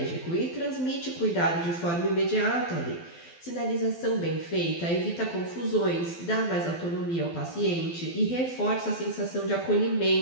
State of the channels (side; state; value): right; late; 12 ms